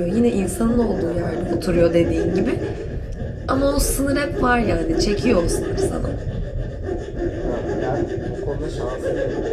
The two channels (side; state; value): both; identical; correlation 1.00